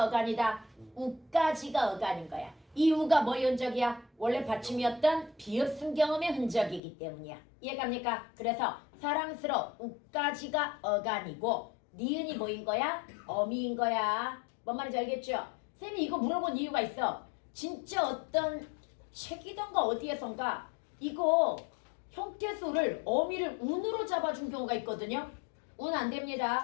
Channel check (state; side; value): drops out; right; at 6.8 s